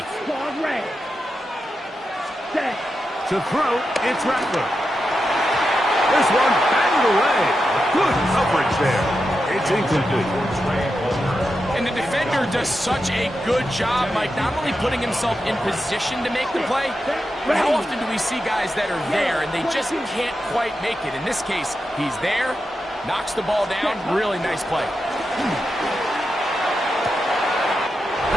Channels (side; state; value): both; normal; correlation 0.88